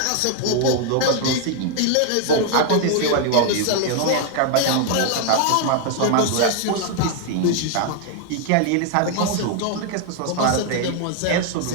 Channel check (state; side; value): different; both; correlation 0.00